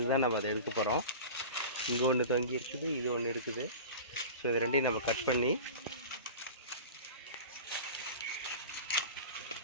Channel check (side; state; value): both; inverted; correlation -0.34